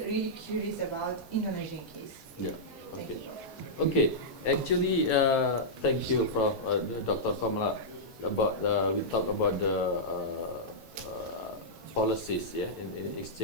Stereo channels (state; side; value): late; left; 5.3 ms